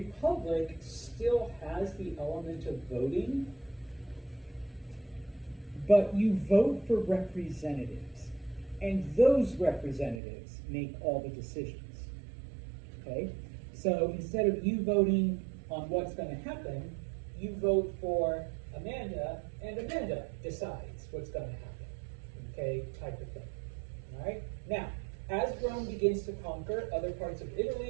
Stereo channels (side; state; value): left; drops out; at 10.2 s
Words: still has the element of voting, but you vote for representatives, and those representatives make all the decisions. Okay? So instead of you voting on what's going to happen, you vote for Amanda, and Amanda decides what's going to happen. Okay, type of thing. All right. Now, as Rome begins to conquer other parts of